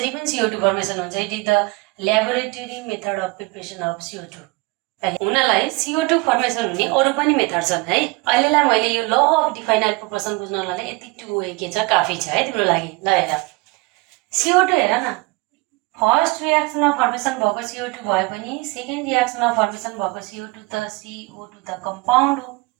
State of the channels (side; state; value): left; quieter; 25.1 dB